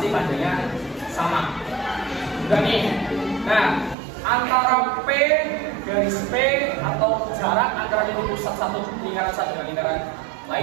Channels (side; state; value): left; drops out; at 4.0 s